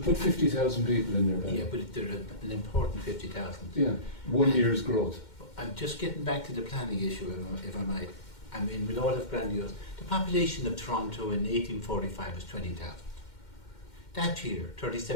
put 50,000 people in there, Ben. Yeah, but they're an important 50,000. Yeah, 1 year's growth. I'm just getting back to the planning issue, if I might. I mean, with all of grandiose, the population of Toronto in 1845 was 20,000. That year,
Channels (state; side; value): late; right; 2.1 ms